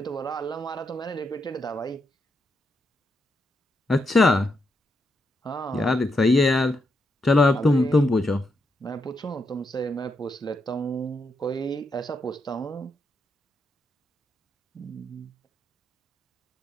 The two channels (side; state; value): both; normal; correlation 0.81